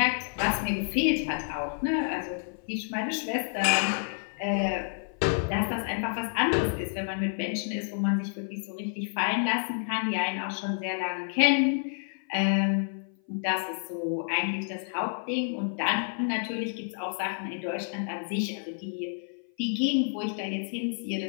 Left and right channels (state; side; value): silent; right; 56 dB below the other